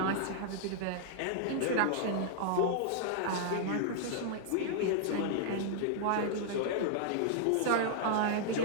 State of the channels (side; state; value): both; different; correlation -0.01